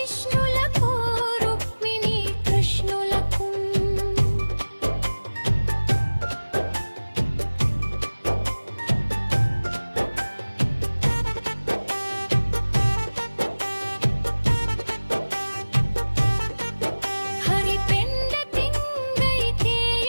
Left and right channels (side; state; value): both; inverted; correlation -1.00